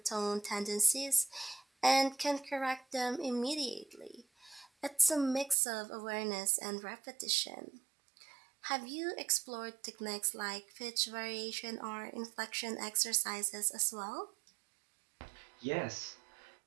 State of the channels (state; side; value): drops out; left; at 5.6 s